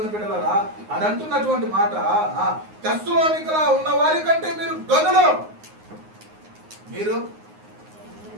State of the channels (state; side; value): late; left; 9.6 ms